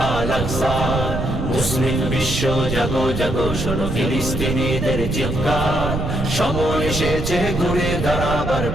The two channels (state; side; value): noise; right; rumble, 4 dB below the sound